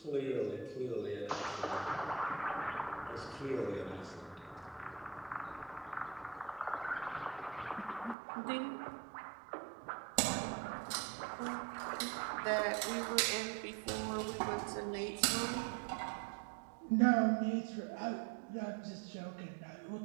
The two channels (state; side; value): drops out; left; at 8.2 s